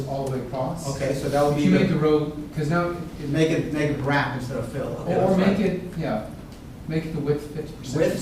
all the way across. Okay, so that would be You make the row, because now make it wrap instead of fill. Okay, or that's make right. it, yeah, make it the width 50% or Width?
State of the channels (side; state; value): both; identical; correlation 1.00